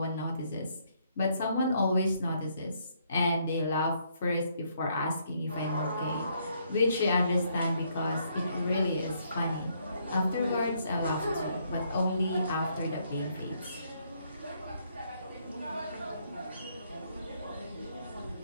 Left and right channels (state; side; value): inverted; both; correlation -0.71